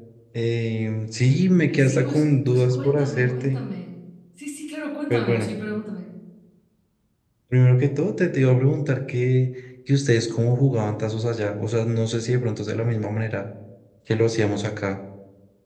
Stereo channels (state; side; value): identical; both; correlation 1.00